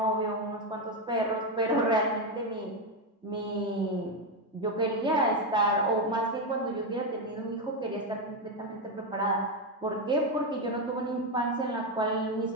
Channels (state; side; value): normal; both; correlation 0.08